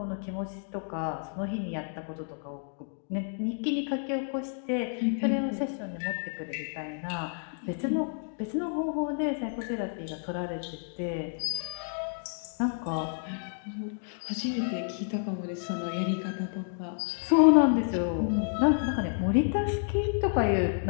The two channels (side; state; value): right; silent; digital silence